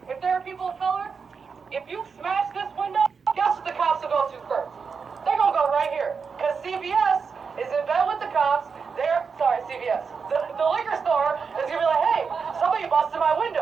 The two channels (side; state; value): left; quieter; 5.5 dB